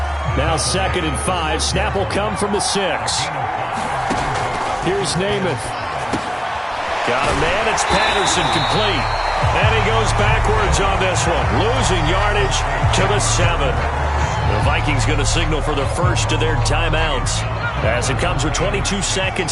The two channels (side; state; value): both; identical; correlation 1.00